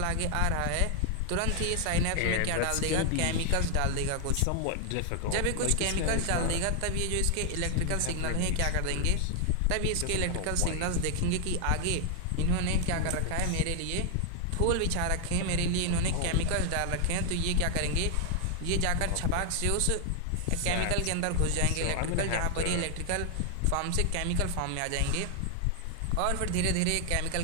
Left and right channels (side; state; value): both; different; correlation 0.00